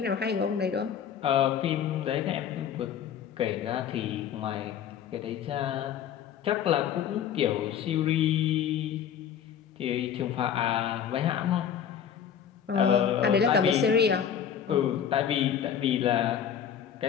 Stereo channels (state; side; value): quieter; right; 8.6 dB